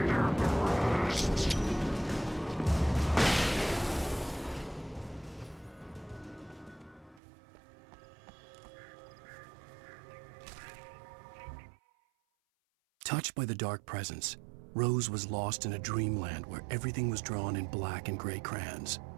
arrest. Touched by the dark presence, Rose was lost in a dreamland where everything was drawn in black and gray crayons.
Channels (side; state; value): left; drops out; at 7.2 s